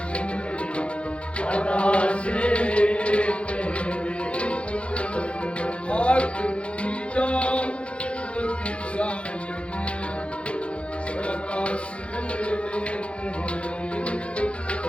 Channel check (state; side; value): late; right; 0.060 ms